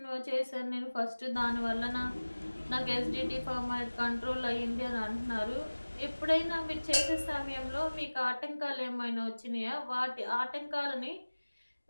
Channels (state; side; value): inverted; both; correlation -1.00